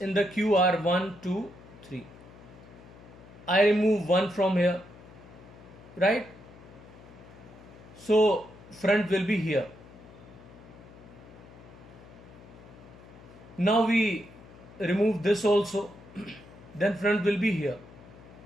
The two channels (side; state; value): left; noise; hum, 20 dB below the sound